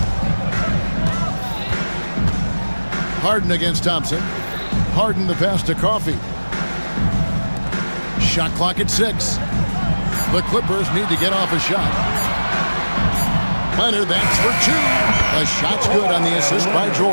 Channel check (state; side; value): inverted; both; correlation -1.00